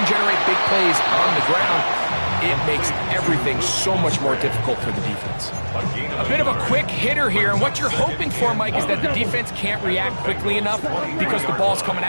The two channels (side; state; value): both; inverted; correlation -1.00